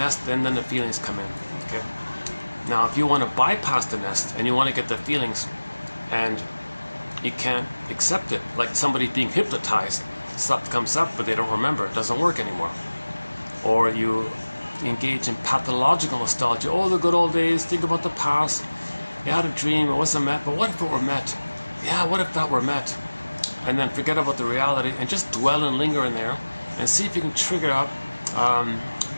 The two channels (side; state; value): both; inverted; correlation -1.00